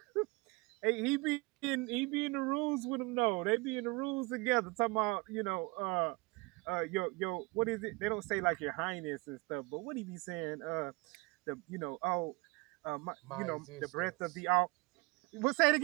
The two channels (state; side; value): quieter; left; 26.0 dB